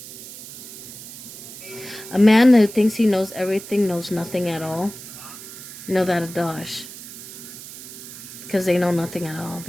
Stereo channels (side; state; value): right; noise; hiss, 14 dB below the sound